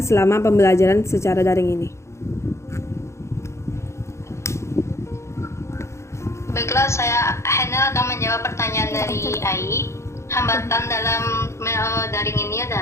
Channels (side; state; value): right; late; 0.14 ms